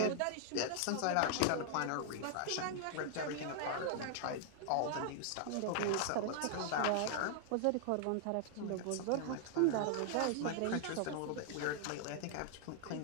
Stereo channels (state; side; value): different; both; correlation 0.00